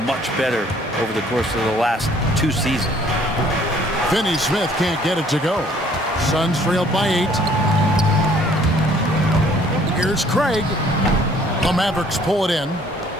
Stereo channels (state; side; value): normal; both; correlation 0.59